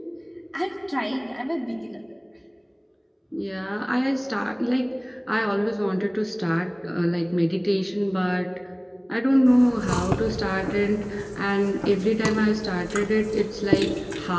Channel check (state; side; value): identical; both; correlation 1.00